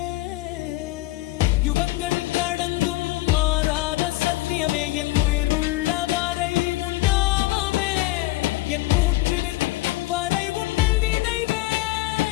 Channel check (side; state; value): right; quieter; 18.8 dB